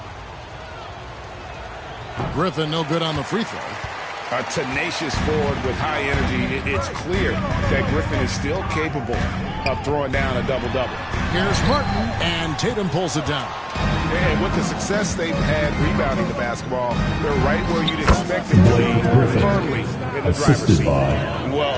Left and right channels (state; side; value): identical; both; correlation 1.00